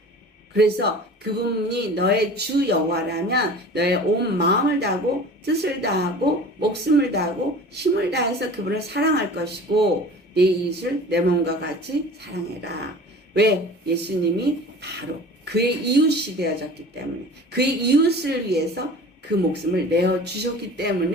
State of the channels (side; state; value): both; normal; correlation 0.41